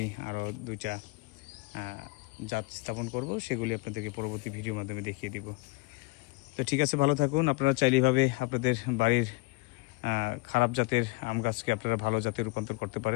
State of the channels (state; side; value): quieter; right; 25.4 dB